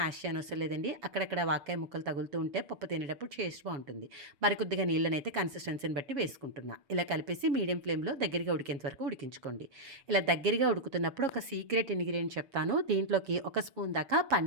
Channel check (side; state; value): left; late; 7.2 ms